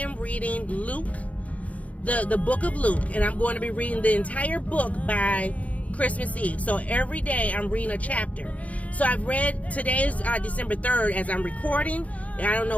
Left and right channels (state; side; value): late; right; 0.068 ms